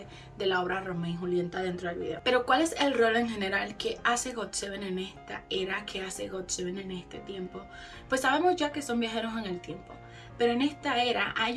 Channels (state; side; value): identical; both; correlation 1.00